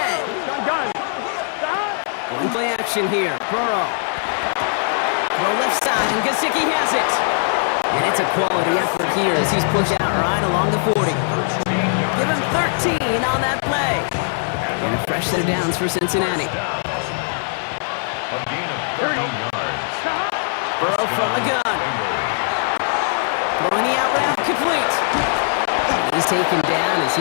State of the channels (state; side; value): silent; right; digital silence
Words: Going play action here. Burrow. Throw left side, and Gesicki has it. And it's a quality effort here as he's pushed out right along the 40. Give him 13 on that play. And a fresh set of downs for Cincinnati. Burrow from the gun. Throwing the out route complete. complete. He's taken down as